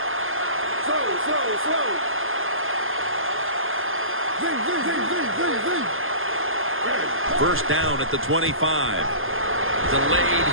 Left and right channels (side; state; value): left; late; 0.59 ms